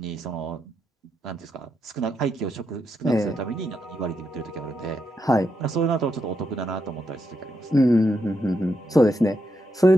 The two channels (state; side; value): normal; both; correlation 0.82